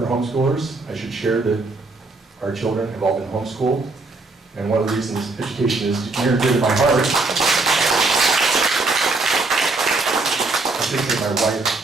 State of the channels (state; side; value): quieter; left; 3.4 dB